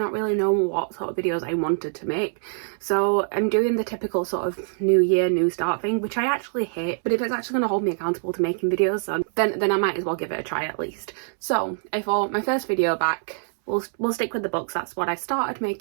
really knowing what sort of videos I wanted to make. So I'm doing the typical sort of new year, new start thing, which I actually hate, but if it's actually going to hold me accountable to making videos, then I might as well give it a try at least. So I thought my first video back, we'll stick with the books. That's what I started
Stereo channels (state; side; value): silent; left; 62 dB below the other